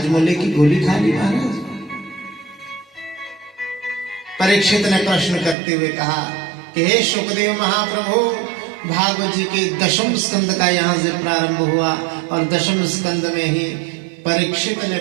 की गोली खा ली महाराज। परीक्षित ने प्रश्न करते हुए कहा कि हे शुकदेव महाप्रभु, भागवत जी के दशम स्कंद का यहाँ से प्रारंभ हुआ और दशम स्कंद में ही परीक्षित ने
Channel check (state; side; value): drops out; left; at 5.6 s